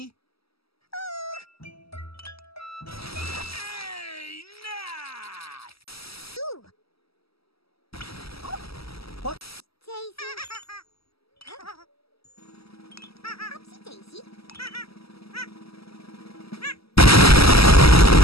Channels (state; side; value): late; right; 0.76 ms